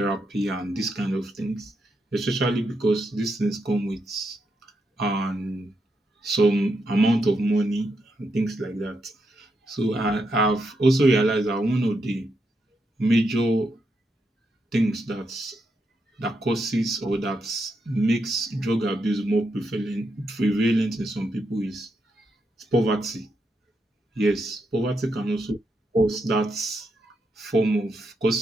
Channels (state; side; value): normal; both; correlation 0.82